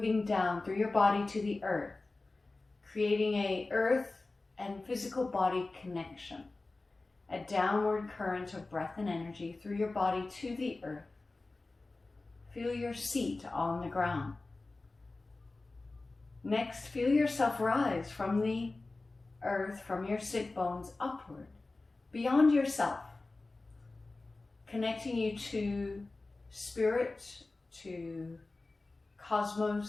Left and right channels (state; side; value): quieter; right; 3.3 dB